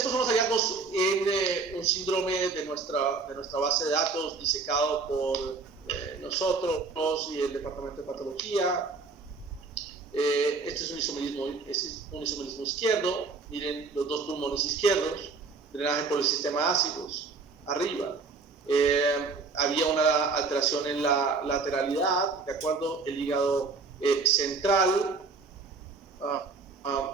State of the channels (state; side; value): quieter; left; 4.3 dB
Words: son los hallazgos en un síndrome de nuestra base de datos disecado por nosotros y el departamento de patología. Este es un isomerismo izquierdo. Miren los dos pulmones izquierdos, drenaje por el sistema ácidos, arriba. Había una alteración en la lateralidad, ¿de acuerdo? El hígado central,